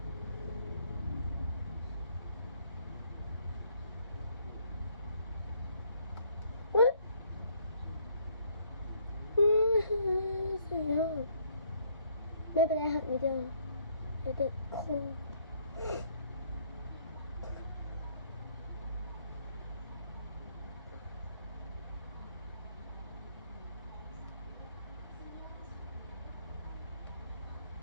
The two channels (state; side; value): inverted; both; correlation -0.66